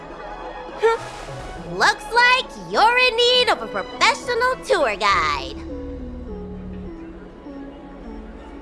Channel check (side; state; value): both; identical; correlation 1.00